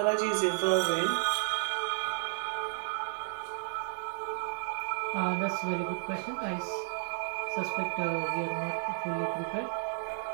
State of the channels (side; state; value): left; silent; digital silence